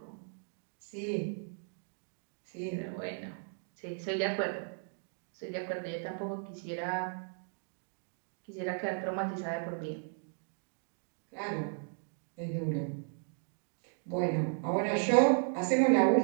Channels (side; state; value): left; silent; 54 dB below the other